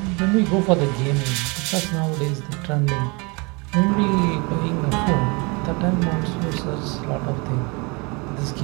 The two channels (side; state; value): left; quieter; 29.0 dB